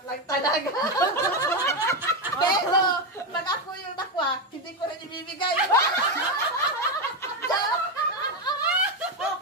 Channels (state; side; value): normal; both; correlation 0.10